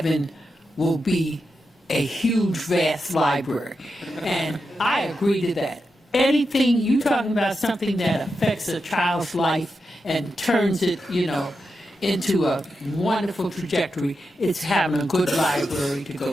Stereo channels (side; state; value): both; normal; correlation 0.88